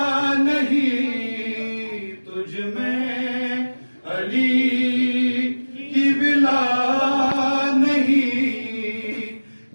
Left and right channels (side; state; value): both; inverted; correlation -1.00